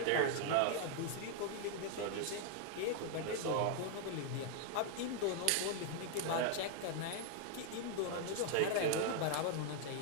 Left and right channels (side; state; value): both; different; correlation 0.00